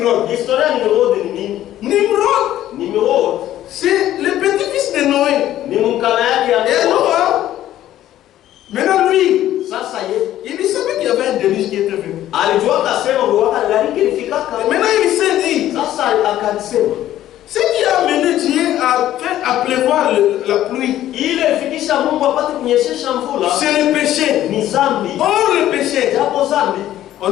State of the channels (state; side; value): quieter; right; 12.9 dB